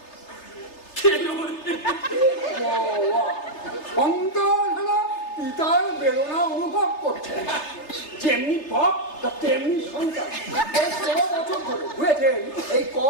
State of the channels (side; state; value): right; late; 3.3 ms